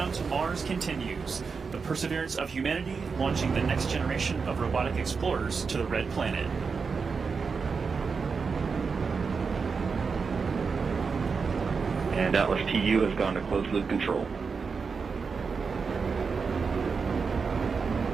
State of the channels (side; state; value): left; quieter; 5.2 dB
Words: to Mars continues, the perseverance of humanity launching the next generation of robotic explorers to the Red Planet. And Atlas TU has gone to closed loop control.